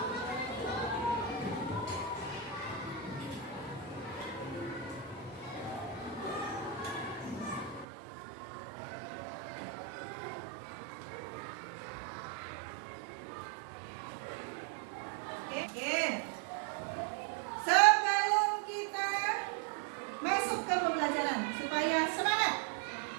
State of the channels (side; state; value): left; drops out; at 7.9 s